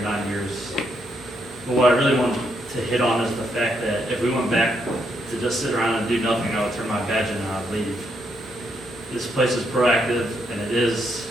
9 years. But what I really want to hit on is the fact that if we went back to just sit around and do nothing, I would turn my badge in and I would leave. This place is proactive and it is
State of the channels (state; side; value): normal; both; correlation 0.77